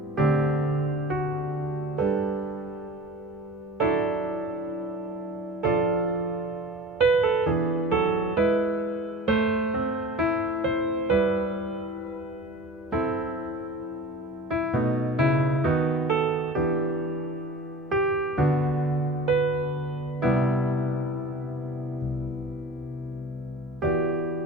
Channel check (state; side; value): normal; both; correlation 0.40